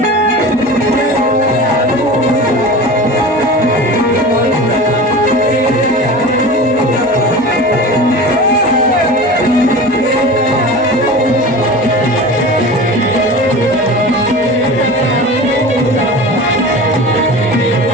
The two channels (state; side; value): normal; both; correlation 0.33